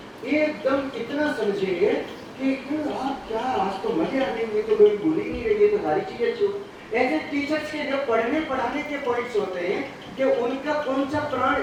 एकदम इतना समझेंगे कि कि आप क्या आज तो मजे आ रही है, तो कोई भूल ही नहीं रही है, तो सारी चीजें छू। ऐसे टीचर्स के जो पढ़ने पढ़ाने के पॉइंट्स होते हैं कि उनका कौन सा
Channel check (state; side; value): identical; both; correlation 1.00